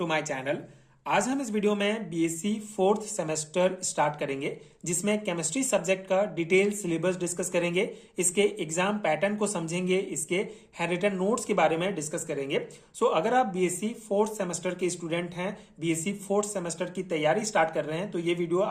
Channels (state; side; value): identical; both; correlation 1.00